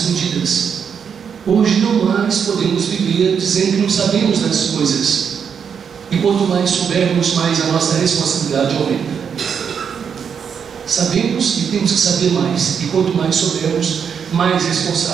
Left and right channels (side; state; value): left; quieter; 7.0 dB